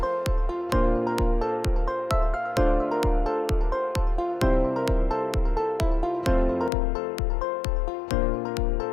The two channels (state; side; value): drops out; right; at 6.7 s